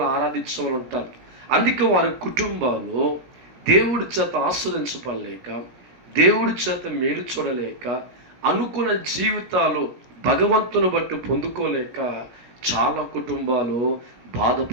ఆరాధించే వాళ్ళు ఉంటారు. అందుకే వారి కుటుంబాలు దేవుడి చేత ఆస్వాదించబడలేక, దేవుడి చేత మేలు చూడలేక, అనుకున్న జీవితాలు భగవంతుని బట్టి పొందుకోలేక చాలా కుటుంబాలు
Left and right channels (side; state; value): left; late; 17 ms